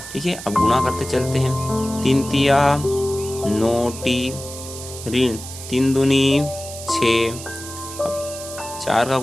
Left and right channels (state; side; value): noise; right; hiss, 12 dB below the sound